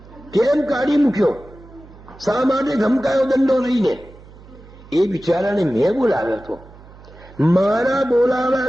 કેમ કાઢી મૂક્યો, શા માટે ધમકાયો દંડો લઈને. એ બિચારાને મેં બોલાવ્યો હતો, મારા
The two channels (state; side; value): noise; right; hum, 21 dB below the sound